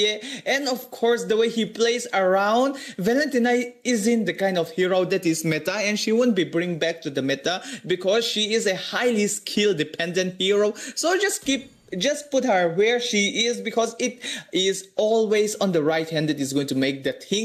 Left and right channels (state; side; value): identical; both; correlation 1.00